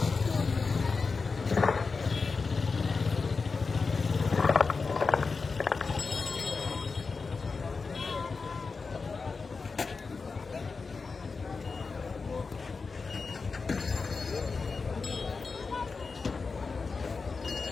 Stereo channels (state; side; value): quieter; right; 4.5 dB